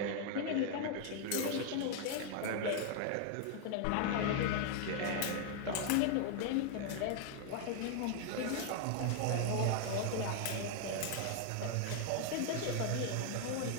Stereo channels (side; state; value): both; different; correlation 0.00